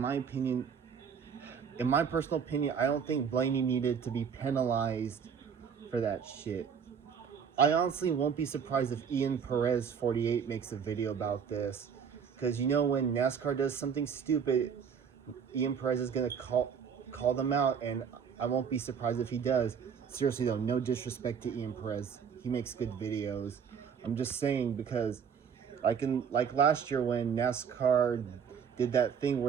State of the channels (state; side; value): quieter; left; 7.0 dB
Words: personal opinion, I don't think Blaney needed to be penalized for that shit. I honestly won't be surprised if Ian Perez 48 makes a video about this, because you know, when NASCAR does something stupid, Ian Perez is gonna call them out, and I won't be surprised if he does. Seriously though, no disrespect to Ian Perez, he makes good videos. I'm just saying, because like last year when NASCAR did that thing